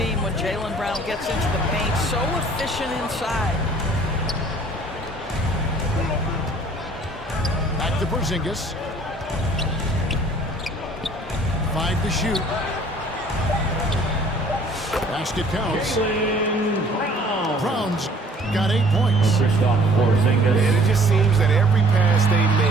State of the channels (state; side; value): normal; both; correlation 0.55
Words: when Jaylen Brown gets into the paint. So efficient inside. Back to Porzingis. 5 to shoot. Basket counts. Browns got 8 points. And it just seems that every pass they